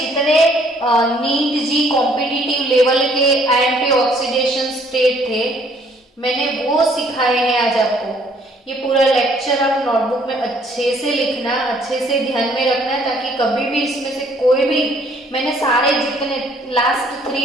नीट जी कॉम्पिटिटिव लेवल के आईएमपी ऑक्सीडेशन स्टेट थे मैंने वो सिखाए हैं आज आपको। ये पूरा लेक्चर आप नोटबुक में अच्छे से लिखना, अच्छे से ध्यान में रखना ताकि कभी भी इसमें से कोई भी, मैंने सारे जितने लास्ट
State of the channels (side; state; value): both; normal; correlation 0.62